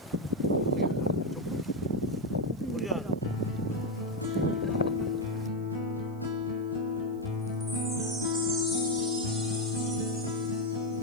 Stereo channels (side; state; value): right; noise; hiss, 29 dB below the sound